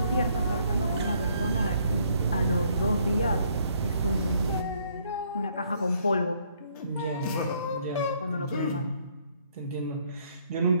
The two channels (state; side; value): inverted; both; correlation -0.66